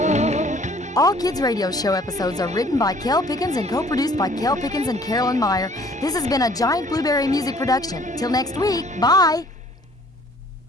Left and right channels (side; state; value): both; normal; correlation 0.56